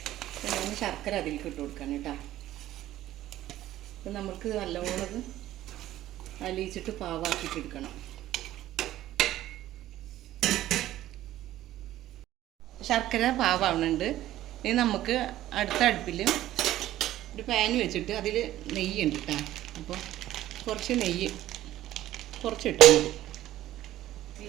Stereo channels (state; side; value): quieter; left; 14.0 dB